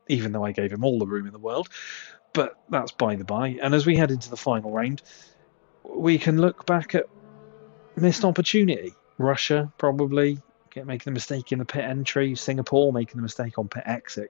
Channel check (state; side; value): silent; right; 61 dB below the other